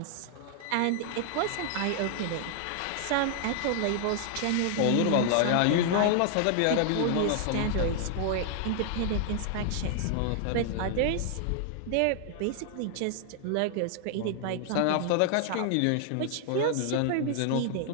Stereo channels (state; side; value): different; both; correlation 0.00